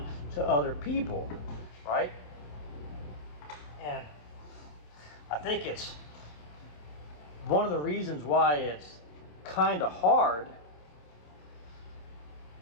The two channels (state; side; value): late; right; 27 ms